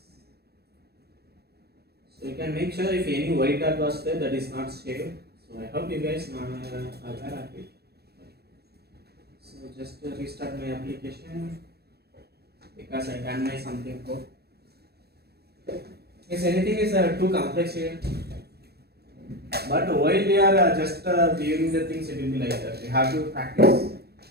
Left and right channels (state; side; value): late; left; 0.47 ms